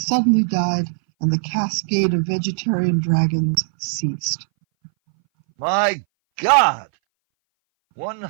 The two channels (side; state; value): left; silent; 61 dB below the other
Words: died, and the cascade of vegetarian dragons ceased. My God.